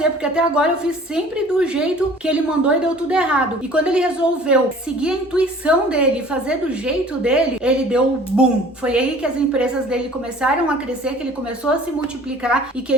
porque até agora eu fiz sempre do jeito que ele mandou e deu tudo errado. E quando ele resolveu seguir a intuição dele e fazer do jeito dele, ele deu boom. Foi aí que as empresas dele começaram a crescer, que ele começou a se multiplicar e que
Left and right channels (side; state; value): both; normal; correlation 0.49